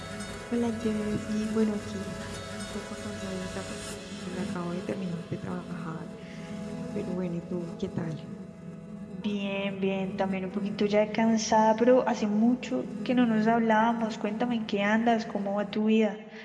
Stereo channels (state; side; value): identical; both; correlation 1.00